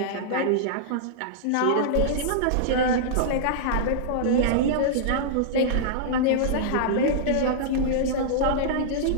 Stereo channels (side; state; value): both; different; correlation -0.02